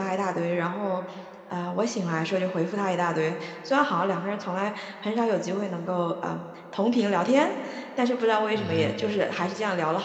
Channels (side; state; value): both; identical; correlation 1.00